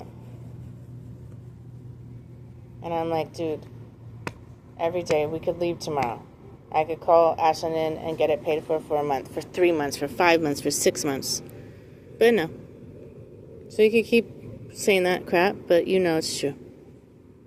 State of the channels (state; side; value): identical; both; correlation 1.00